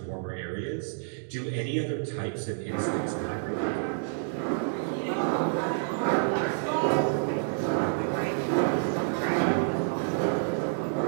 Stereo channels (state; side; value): silent; left; digital silence